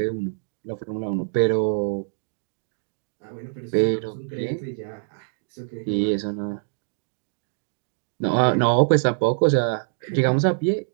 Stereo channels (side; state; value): left; silent; digital silence